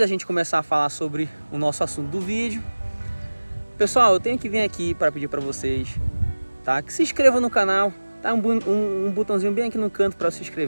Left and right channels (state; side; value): inverted; both; correlation -1.00